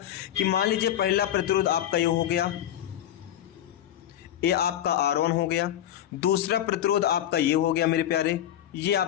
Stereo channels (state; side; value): quieter; right; 11.5 dB